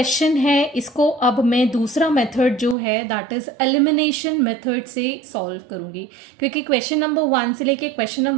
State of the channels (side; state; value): left; drops out; at 2.8 s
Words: है इसको अब मैं दूसरा मेथड जो है दैट इज़ एलिमिनेशन मेथड से सॉल्व करूँगी, क्योंकि क्वेश्चन नंबर 1 से लेके क्वेश्चन